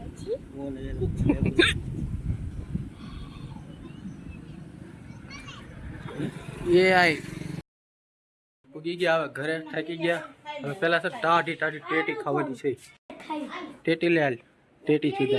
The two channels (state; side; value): identical; both; correlation 1.00